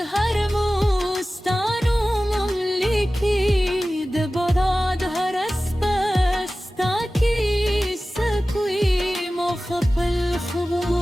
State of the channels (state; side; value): normal; both; correlation 0.96